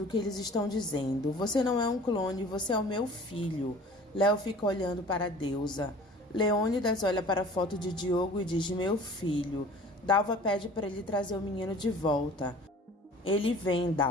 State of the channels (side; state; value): both; normal; correlation 0.45